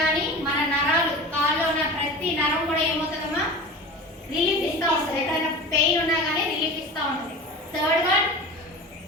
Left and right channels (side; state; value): both; normal; correlation 0.33